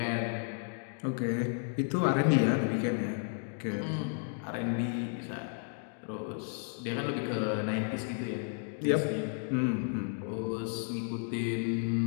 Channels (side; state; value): right; silent; 56 dB below the other